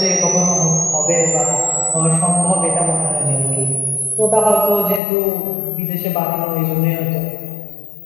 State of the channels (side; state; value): right; drops out; at 5.0 s